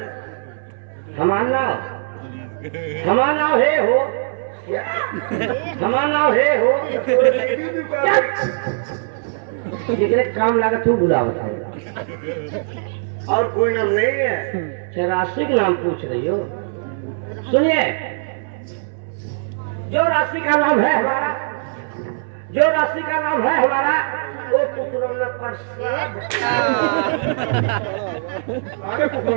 हमारा नाम है हो, हमारा नाम है हो। जितने काम लगा तू बुला बताएगा। और कोई नाम नहीं है? राशि का नाम पूछ रही हो? सुनिए, जो राशि का नाम है हमारा, जो राशि का नाम है हमारा वो कुकरौना प्रसाद। अरे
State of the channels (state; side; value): silent; left; 64 dB below the other